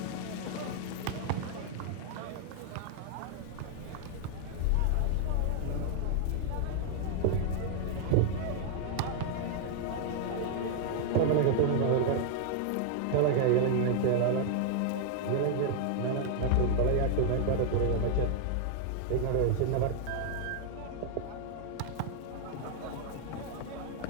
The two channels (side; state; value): both; different; correlation 0.00